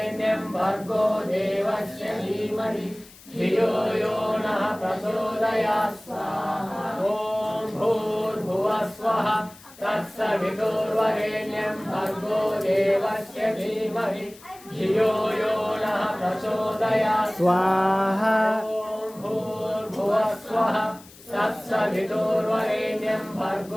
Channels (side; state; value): left; noise; hiss, 22 dB below the sound